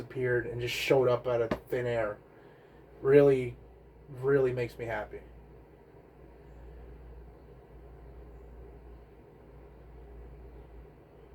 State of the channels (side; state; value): both; identical; correlation 1.00